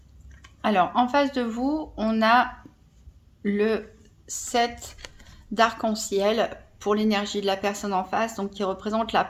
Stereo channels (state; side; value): identical; both; correlation 1.00